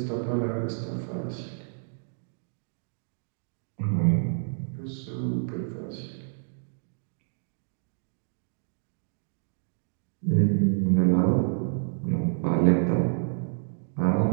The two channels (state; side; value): silent; left; digital silence